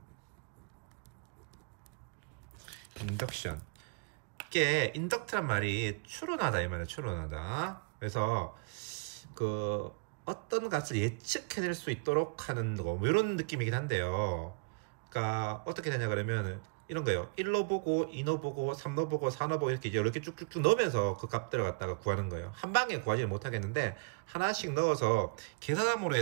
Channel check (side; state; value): left; quieter; 31.5 dB